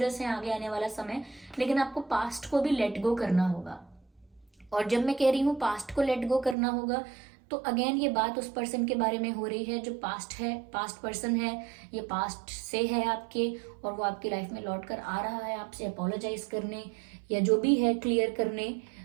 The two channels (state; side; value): drops out; left; at 6.6 s